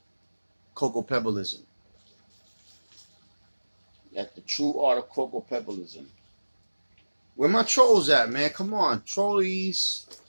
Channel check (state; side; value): inverted; both; correlation -1.00